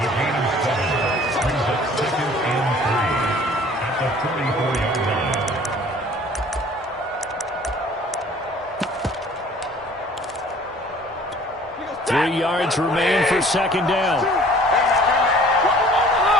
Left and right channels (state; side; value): normal; both; correlation 0.52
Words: Three yards remain for second down.